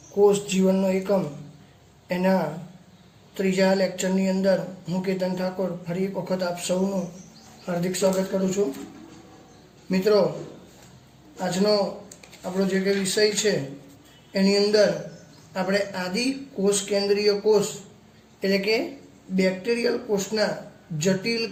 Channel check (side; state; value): both; identical; correlation 1.00